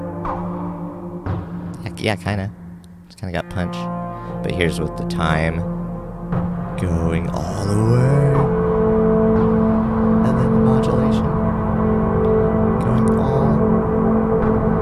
Yeah, kinda. It's kinda got punch. But here's with the time going all the way. And then the modulation going all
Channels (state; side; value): identical; both; correlation 1.00